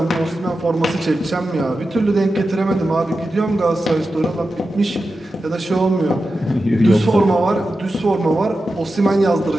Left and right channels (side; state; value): both; normal; correlation 0.92